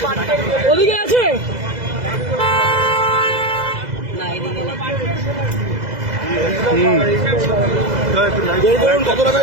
ওদিকে আছে কত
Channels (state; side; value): late; left; 2.0 ms